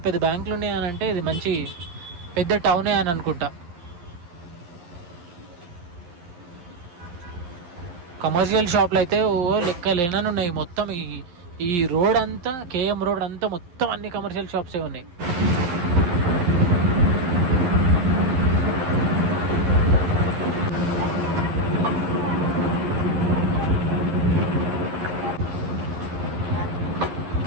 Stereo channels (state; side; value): late; left; 11 ms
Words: పెద్ద బ్యాంకులు ఉన్నాయని అంటే ఇది మంచి పెద్ద టౌనే అని అనుకుంటా. కమర్షియల్ షాప్లు అయితే లెక్క లేనని ఉన్నాయి మొత్తం. ఈ రోడ్ అంతా, కేఎం రోడ్ అంతా మొత్తం అన్ని కమర్షియల్ షాప్సే ఉన్నాయి.